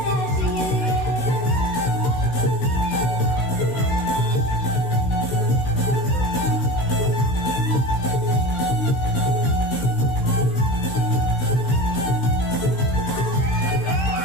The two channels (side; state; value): right; late; 16 ms